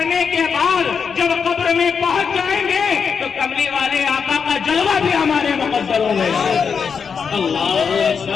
کے بعد جب قبر میں پہنچ جائیں گے تو کملی والے آقا کا جلوہ بھی ہمارے مقدروں میں ہے. اللہ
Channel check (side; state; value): right; quieter; 6.2 dB